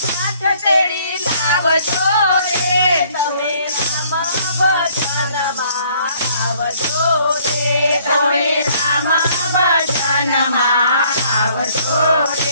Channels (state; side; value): inverted; both; correlation -0.62